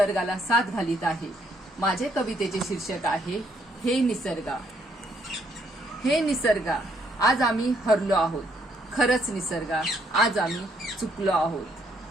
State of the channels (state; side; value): normal; both; correlation 0.71